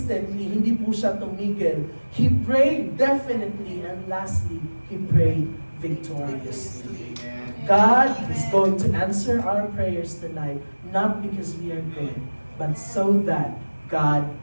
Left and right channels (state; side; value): inverted; both; correlation -1.00